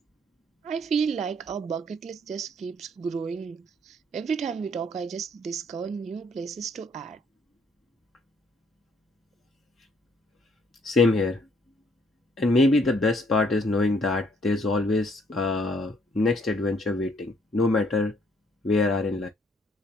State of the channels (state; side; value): normal; both; correlation 0.66